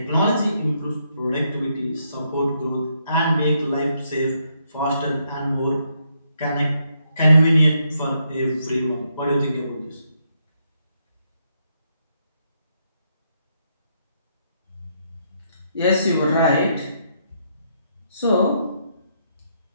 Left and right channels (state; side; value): inverted; both; correlation -0.76